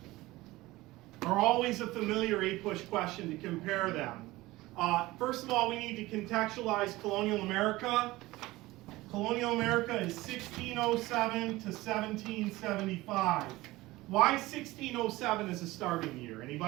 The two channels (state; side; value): quieter; left; 19.1 dB